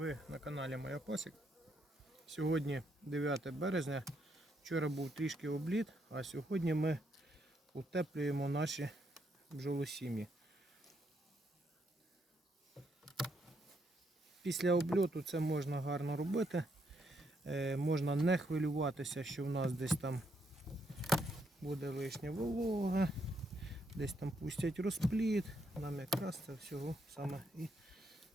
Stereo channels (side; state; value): both; normal; correlation 0.75